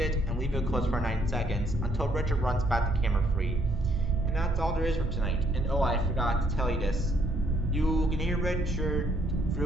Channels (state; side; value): normal; both; correlation 0.69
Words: and leave it closed for 9 seconds until Richard runs back to camera 3. And that's all there is for tonight. And oh, I forgot to tell you this. You can hear Richard